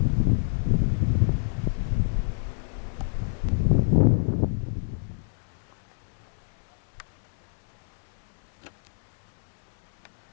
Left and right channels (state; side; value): silent; right; 60 dB below the other